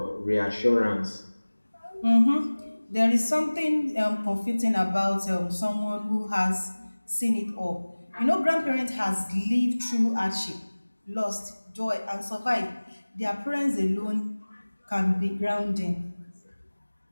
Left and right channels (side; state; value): both; inverted; correlation -1.00